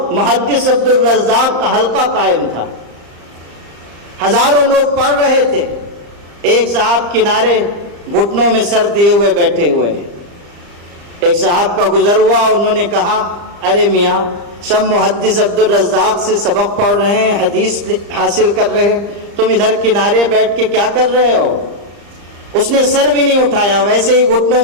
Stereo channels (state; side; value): late; left; 35 ms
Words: محدث عبد الرزاق کا حلقہ قائم تھا، ہزاروں لوگ پڑھ رہے تھے۔ ایک صاحب کنارے گھٹنوں میں سر دیے ہوئے بیٹھے ہوئے ہیں۔ ایک صاحب کا گزر ہوا، انہوں نے کہا، ارے میاں، سب محدث عبد الرزاق سے سبق پڑھ رہے ہیں، حدیث حاصل کر رہے ہیں، تم ادھر کنارے بیٹھ کے کیا کر رہے ہو؟ اس نے سر بھی نہیں اٹھایا، ویسے ہی گھٹنوں